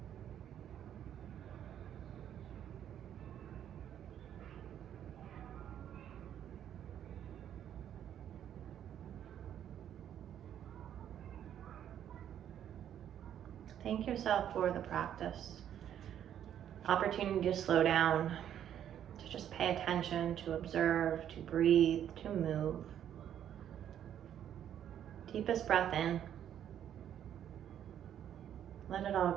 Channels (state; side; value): quieter; left; 10.1 dB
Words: Thank yourself for the practice. Opportunity to slow down, to just pay attention, to observe, to breathe, to move. Deepest breath in. Let it all